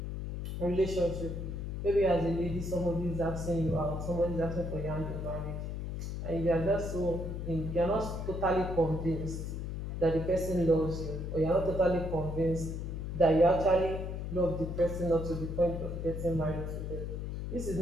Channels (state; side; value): noise; left; hum, 5 dB below the sound